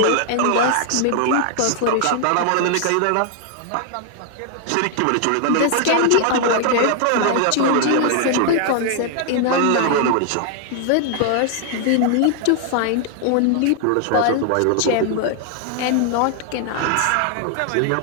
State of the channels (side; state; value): both; different; correlation 0.00